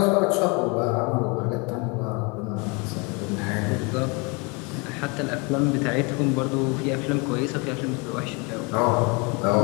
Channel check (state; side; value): quieter; right; 30.1 dB